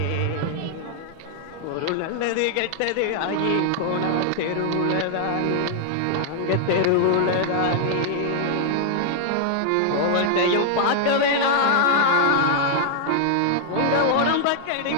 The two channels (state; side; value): different; both; correlation -0.01